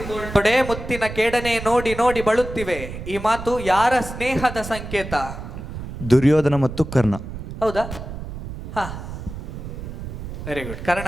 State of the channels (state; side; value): noise; right; rumble, 9 dB below the sound